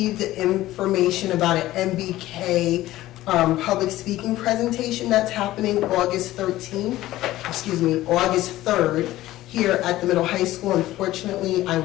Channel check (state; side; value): quieter; right; 15.8 dB